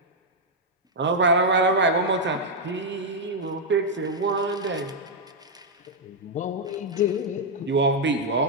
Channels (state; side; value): normal; both; correlation -0.03